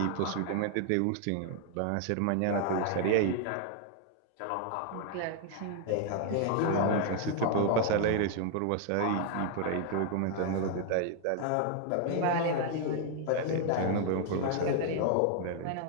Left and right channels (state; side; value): different; both; correlation 0.00